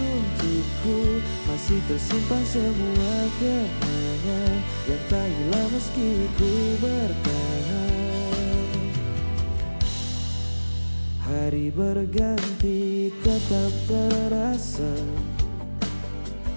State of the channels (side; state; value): both; inverted; correlation -1.00